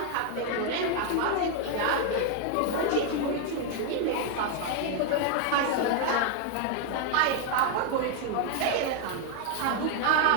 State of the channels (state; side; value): different; both; correlation 0.01